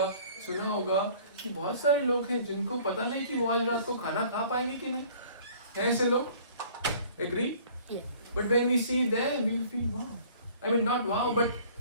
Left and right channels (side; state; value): both; inverted; correlation -0.52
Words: सुना होगा कि बहुत सारे लोग हैं जिनको पता नहीं कि वो आज रात को खाना खा पाएंगे कि नहीं. हैं ऐसे लोग? Agree? Yeah. But when we see them, we'll feel wow. I mean, not wow, but